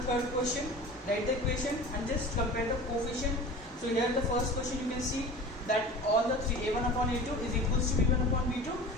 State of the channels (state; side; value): normal; both; correlation 0.38